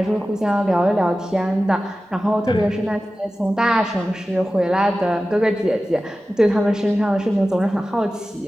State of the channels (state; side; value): normal; both; correlation 0.95